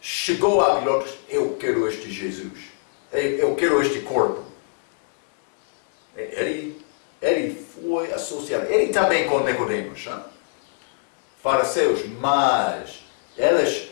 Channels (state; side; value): silent; right; digital silence